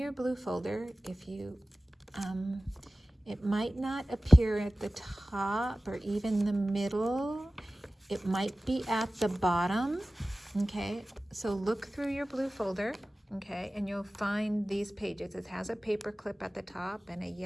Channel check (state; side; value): normal; both; correlation 0.97